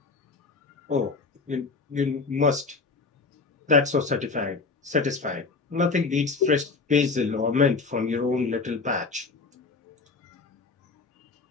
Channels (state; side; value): quieter; right; 4.2 dB